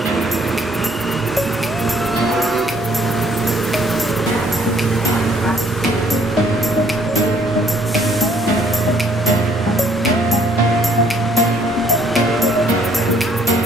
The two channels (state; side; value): normal; both; correlation 0.63